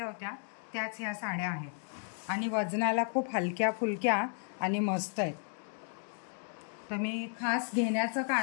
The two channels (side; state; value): right; silent; 55 dB below the other